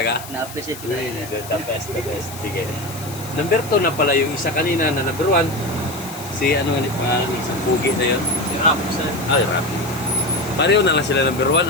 Na-appreciate ko na yun. The best, the best. Sige. Number 2 na pala yung isa kanina na number 1. Si ano nga pangalan ng isang pugi na yun? Si Rap sir. Ay, Rapi. Pareho na lang sila number 1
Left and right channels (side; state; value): left; noise; hiss, 14 dB below the sound